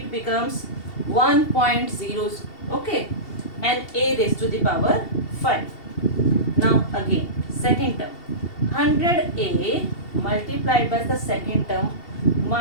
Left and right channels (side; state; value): right; late; 2.7 ms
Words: becomes 1.0, okay, and a raised to the power 5. Now again, second term, 100a multiplied by the second term